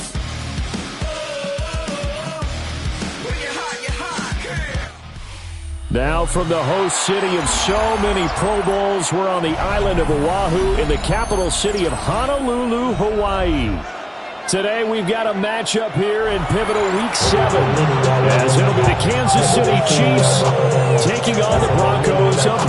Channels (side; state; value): both; identical; correlation 1.00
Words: Oh, when you're hot, yeah. Now from the host city of so many Pro Bowls, we're on the island of Oahu in the capital city of Honolulu, Hawaii. Today we've got a matchup here in pivotal Week 7, as it'll be the Kansas City Chiefs taking on the Broncos of